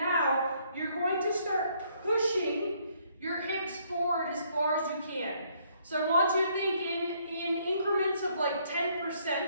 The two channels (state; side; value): inverted; both; correlation -0.67